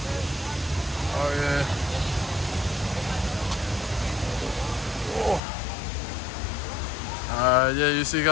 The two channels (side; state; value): right; drops out; at 5.4 s